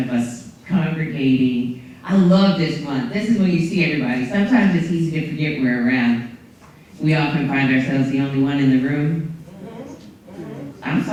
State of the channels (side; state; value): both; identical; correlation 1.00